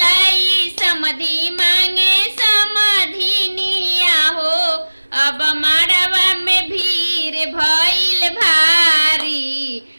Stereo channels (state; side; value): inverted; both; correlation -1.00